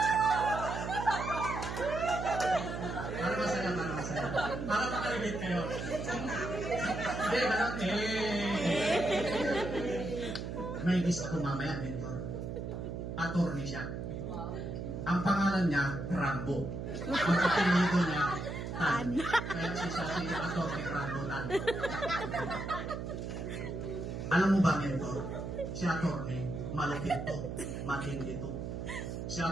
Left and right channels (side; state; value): right; noise; hum, 5 dB below the sound